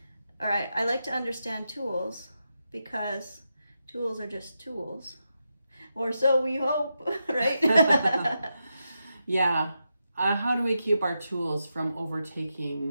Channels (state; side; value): inverted; both; correlation -0.86